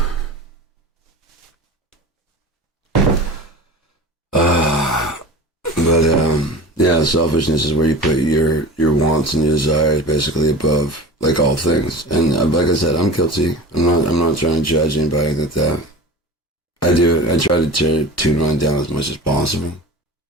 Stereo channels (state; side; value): normal; both; correlation 0.34